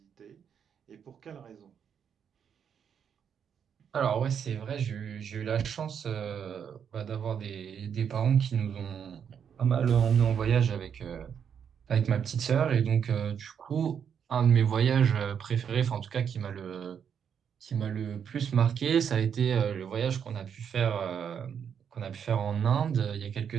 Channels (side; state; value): left; quieter; 7.7 dB